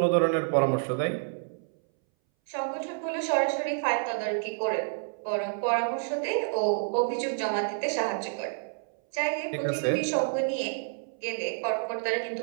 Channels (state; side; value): silent; left; 59 dB below the other